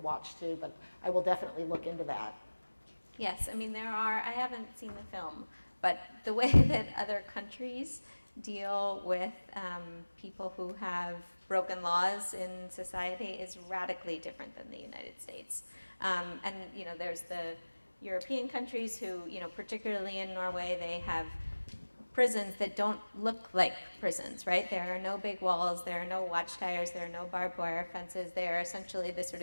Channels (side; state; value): both; inverted; correlation -1.00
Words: too, but I will definitely look into that. Yes, I mean, I haven't seen the film, but the way that other countries deal with people who have broken laws in society is radically different than the United States. And, there's the European countries who, particularly in Norway, they have prisons that don't look like prisons, right? There are no big walls, there are no watchtowers, there are no barbed wire fences. They are essentially the sort